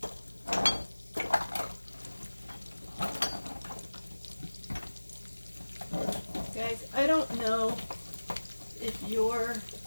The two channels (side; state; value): both; inverted; correlation -1.00